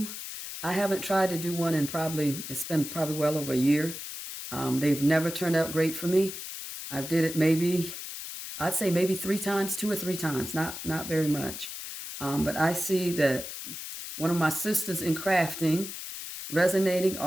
I haven't tried to do one in it's been probably well over a year. They've never turned out great for me. I've did it I'd say maybe 3 times, 2 or 3 times, not very much. But I see that one of my sisters in crafting, Resonating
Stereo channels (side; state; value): left; noise; hiss, 8 dB below the sound